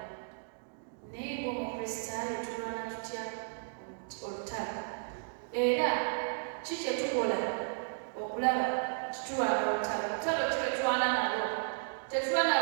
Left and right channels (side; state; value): left; silent; digital silence